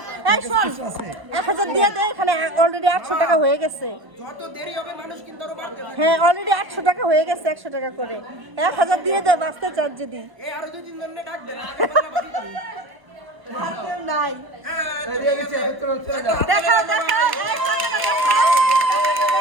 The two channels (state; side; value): late; left; 1.0 ms